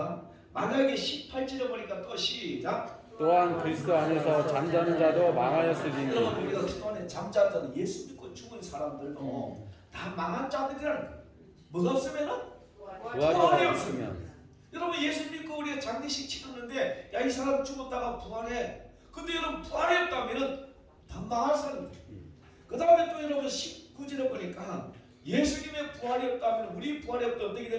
만약에 18절에 보니까 또 시작. 또한 그리스도 안에서 잠자는 자도 망하였으리니. 여러분 우리가 그동안에 잠자는 자는 예수 믿고 죽은 사람들도 다 망한 자들이라는 거예요. 뭐가 없으면은 부활이 없으면. 여러분 예수 믿고 우리가 장례식 치렀는데 야 이 사람 죽었다가 부활해. 근데 여러분 부활이 없다면은 다 망할 사람들. 그 다음에 또 여러분 19절에 보니까 예수님의 부활이 없다면 우리 부활이 없다면 어떻게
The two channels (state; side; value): identical; both; correlation 1.00